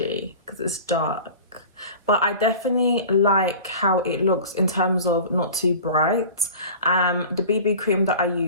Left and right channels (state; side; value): inverted; both; correlation -0.39